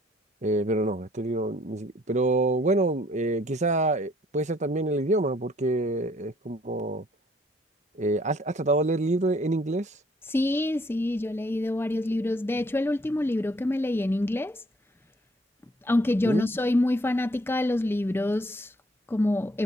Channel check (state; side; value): normal; both; correlation 0.63